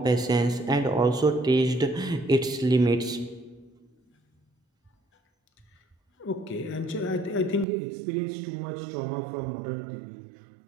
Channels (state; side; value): drops out; left; at 7.7 s